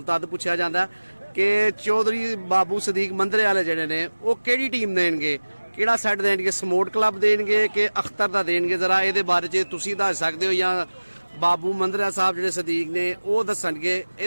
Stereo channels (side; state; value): both; inverted; correlation -1.00